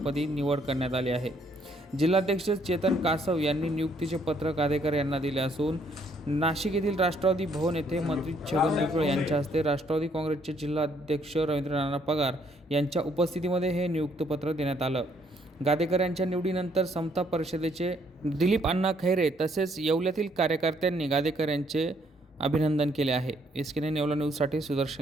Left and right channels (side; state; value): both; normal; correlation 0.68